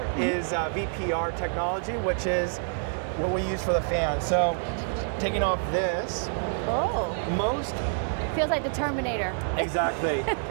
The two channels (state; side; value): silent; left; digital silence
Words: is VPR technology, which is what we use for the fan. So taking off this, most feels like the Terminator. Exactly.